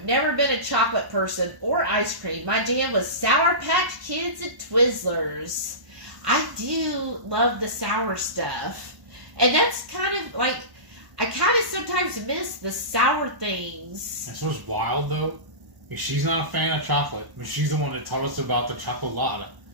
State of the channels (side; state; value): left; late; 1.1 ms